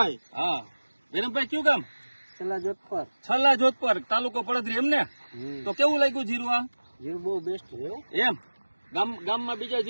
હા વિરમભાઈ કયું ગામ? છેલ્લા જોધપર. છલ્લા જોધપર તાલુકો પડદરી એમ ને? તો કેવું લાગ્યું જીરું આ? જીરું બહુ બેસ્ટ છે હો. એમ ગામમાં બીજા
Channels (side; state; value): both; inverted; correlation -1.00